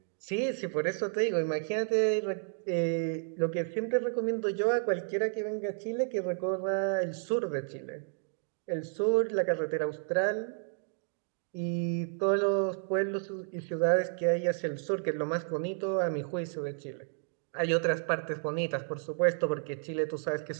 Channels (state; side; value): silent; left; 57 dB below the other